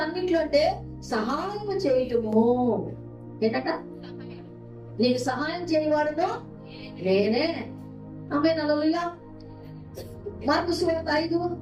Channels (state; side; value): identical; both; correlation 1.00